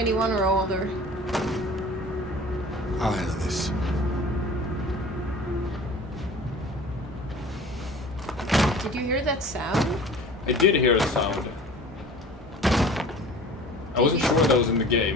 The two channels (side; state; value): both; normal; correlation 0.42